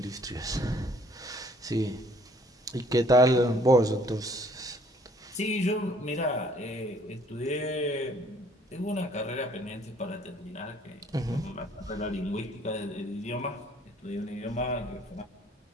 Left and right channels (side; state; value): both; normal; correlation 0.59